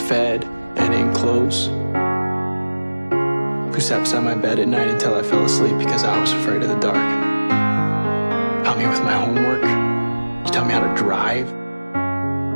and in clothes, who sat beside my bed at night until I fell asleep because I was afraid of the dark. Helped me with my homework. You taught me how to drive.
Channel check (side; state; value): both; inverted; correlation -1.00